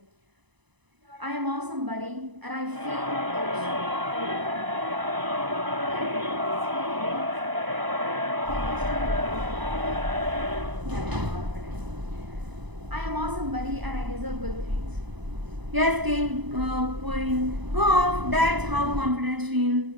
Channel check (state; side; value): late; left; 1.0 ms